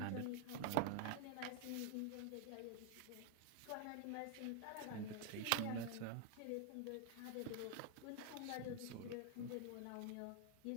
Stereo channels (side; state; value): both; different; correlation -0.01